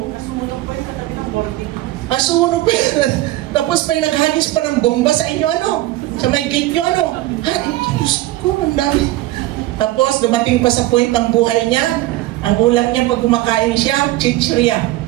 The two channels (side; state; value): left; quieter; 16.7 dB